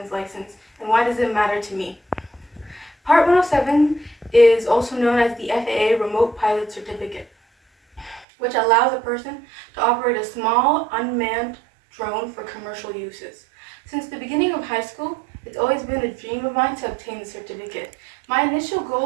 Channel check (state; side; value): drops out; left; at 8.2 s